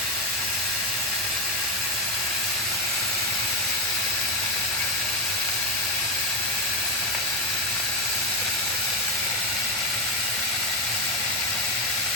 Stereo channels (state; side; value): normal; both; correlation 0.08